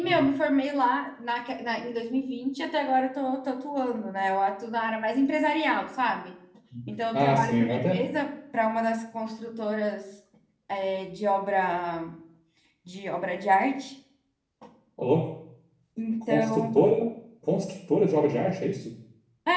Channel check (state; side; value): identical; both; correlation 1.00